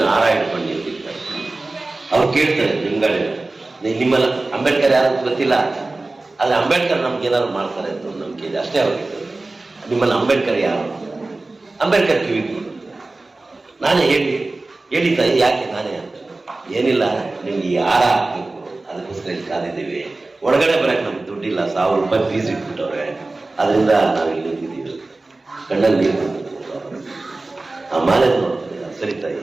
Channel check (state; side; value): quieter; left; 3.1 dB